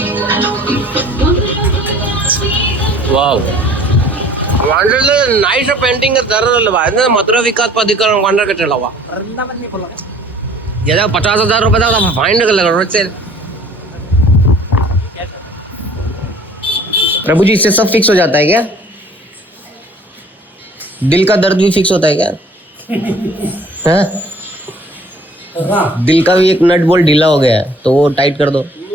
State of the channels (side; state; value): both; normal; correlation 0.52